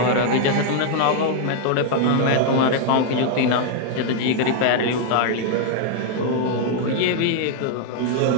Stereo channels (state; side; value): different; both; correlation 0.00